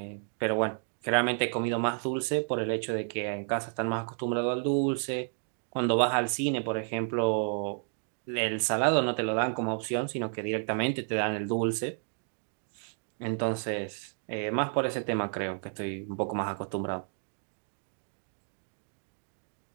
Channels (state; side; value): silent; left; 57 dB below the other